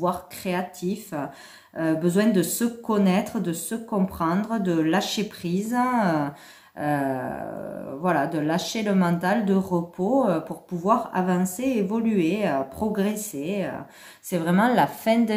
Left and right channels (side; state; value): both; identical; correlation 1.00